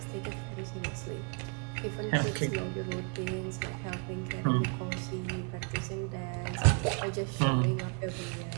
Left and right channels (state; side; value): quieter; left; 36.1 dB